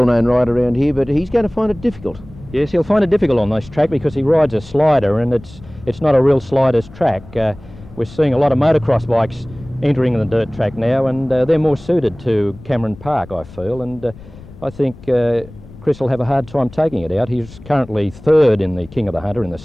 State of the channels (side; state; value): left; noise; rumble, 19 dB below the sound